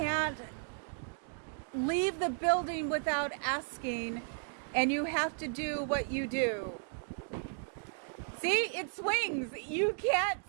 leave the building without asking and you have to do what you do? See, it swings. You can't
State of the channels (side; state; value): left; silent; 55 dB below the other